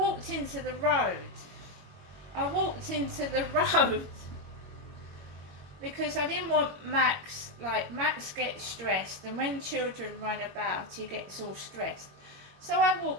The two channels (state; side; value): late; left; 21 ms